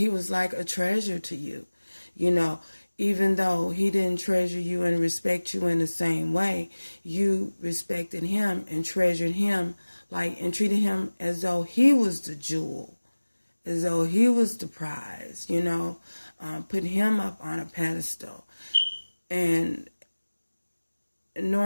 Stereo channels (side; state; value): both; inverted; correlation -1.00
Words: like a treasure to you. Even though he didn't treasure you and respect you in the same way, you respected him and treasured him and treated him as though he was the jewel, as though he was the prize, put him up on a pedestal. And